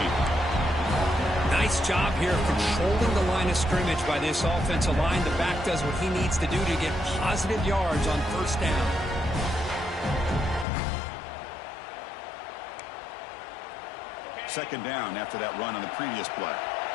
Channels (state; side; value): drops out; right; at 10.7 s